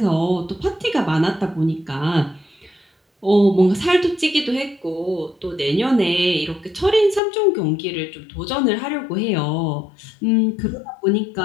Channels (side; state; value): right; drops out; at 7.2 s